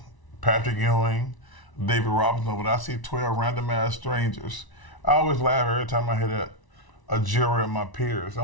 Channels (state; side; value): late; right; 1.0 ms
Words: Patrick Ewing, David Robinson, but I see 12 random ass strangers. I always laugh every time I hear that. a jury of my peers.